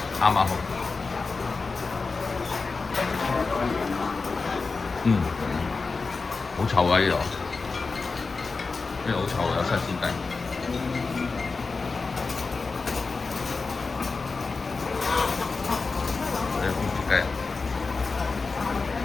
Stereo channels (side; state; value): right; quieter; 4.2 dB